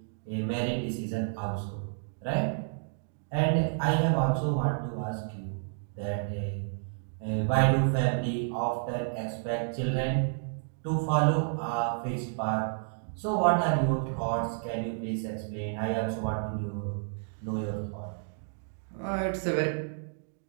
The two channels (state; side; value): silent; left; digital silence